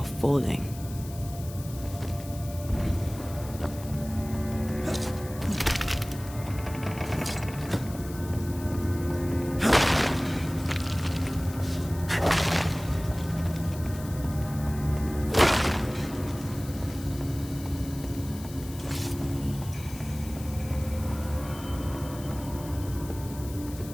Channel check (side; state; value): left; noise; hiss, 16 dB below the sound